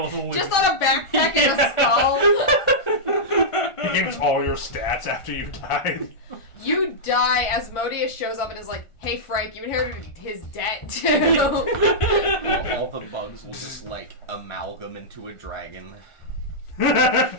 of wood. Just on a backpack and a skull. He gains all your stats after you died. You die. Asmodeus shows up and is like, hey Frank, you inherited his debt too. All the bugs will just like amalgam into a dragon.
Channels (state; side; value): late; right; 1.4 ms